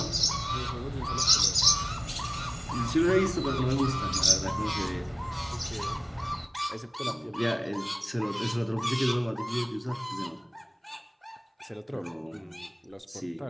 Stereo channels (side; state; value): both; identical; correlation 1.00